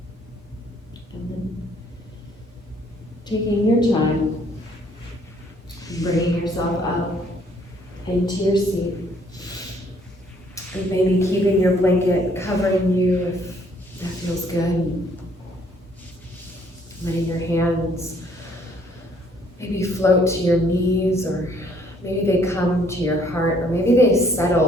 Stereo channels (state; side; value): normal; both; correlation 0.63